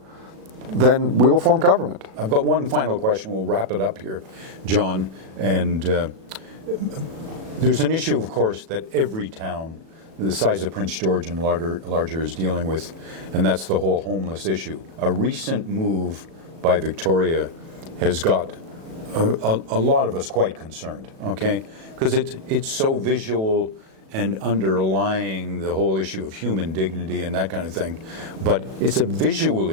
then we will form government. I've got one final question. We'll wrap it up here, John. And there's an issue, of course, that every town the size of Prince George and larger is dealing with, and that's the whole homeless issue. A recent move by Victoria has got a lot of us quite concerned, okay? Because it's so visual and underlying the whole issue of human dignity and that kind of thing. But it's a visual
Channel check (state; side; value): late; left; 37 ms